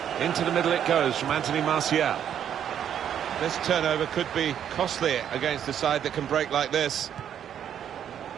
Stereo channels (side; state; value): left; quieter; 9.4 dB